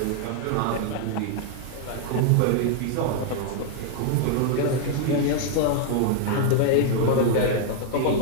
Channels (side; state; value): both; different; correlation 0.00